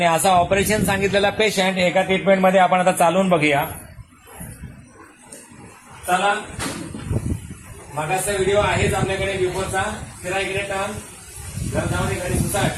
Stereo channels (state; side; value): identical; both; correlation 1.00